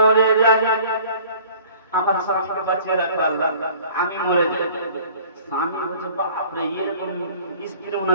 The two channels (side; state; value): both; inverted; correlation -0.50